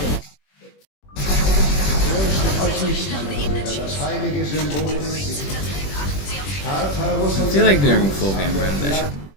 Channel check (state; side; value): late; right; 21 ms